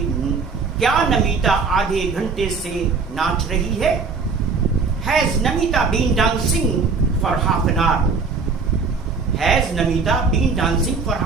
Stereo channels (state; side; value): quieter; left; 4.7 dB